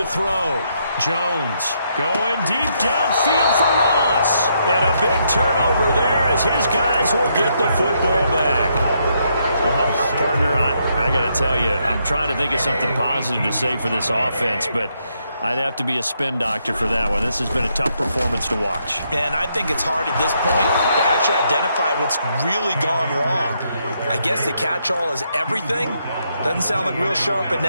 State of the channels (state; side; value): inverted; both; correlation -0.76